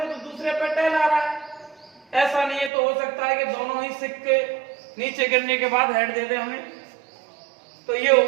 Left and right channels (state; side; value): drops out; left; at 2.7 s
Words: तो दूसरे पर टेल आ रहा है। ऐसा नहीं है, तो हो सकता है कि दोनों ही सिक्के नीचे गिरने के बाद हेड दे दे हमें। तो ये हो